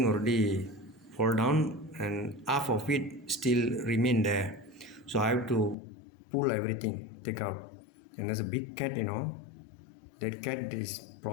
already fall down, and half of it still remain there. So I have to pull everything, take out. And there's a big cat, That cat is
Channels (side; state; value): right; drops out; at 5.8 s